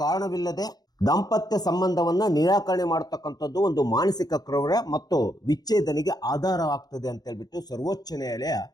ಕಾರಣವಿಲ್ಲದೆ ದಾಂಪತ್ಯ ಸಂಬಂಧವನ್ನ ನಿರಾಕರಣೆ ಮಾಡತಕ್ಕಂಥದ್ದು ಒಂದು ಮಾನಸಿಕ ಕ್ರೌರ್ಯ ಮತ್ತು ವಿಚ್ಛೇದನೆಗೆ ಆಧಾರವಾಗ್ತದೆ ಅಂತ ಹೇಳ್ಬಿಟ್ಟು ಸರ್ವೋಚ್ಚ ನ್ಯಾಯಾಲಯ,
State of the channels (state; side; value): late; right; 0.19 ms